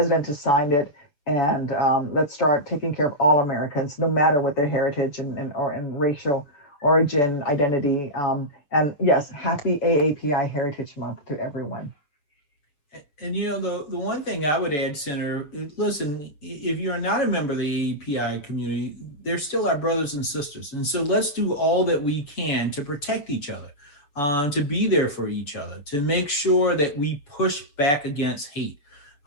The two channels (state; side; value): late; right; 7.0 ms